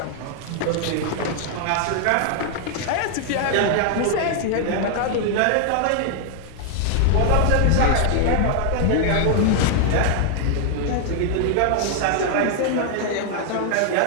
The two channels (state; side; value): different; both; correlation 0.00